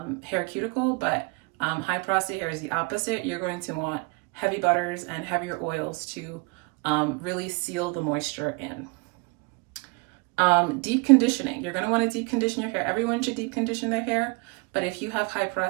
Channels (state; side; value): quieter; left; 30.3 dB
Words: cuticle. But high porosity hair is the opposite. You're going to want heavy butters and heavier oils to really seal the moisture in. Deep conditioning. You're going to want to deep condition your hair. Everyone should deep condition their hair, but if you have high